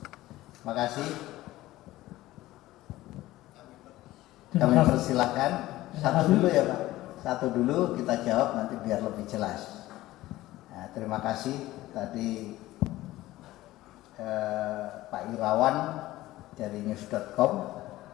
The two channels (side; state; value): right; quieter; 16.6 dB